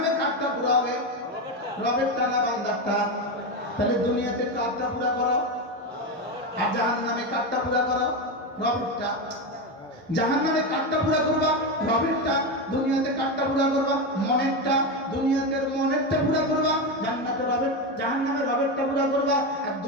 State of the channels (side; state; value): both; normal; correlation 0.14